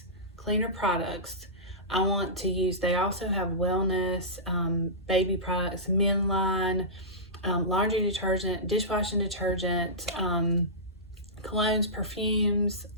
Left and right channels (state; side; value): normal; both; correlation -0.18